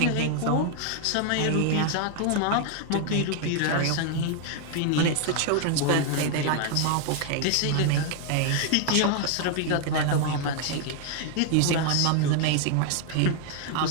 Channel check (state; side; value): different; both; correlation 0.00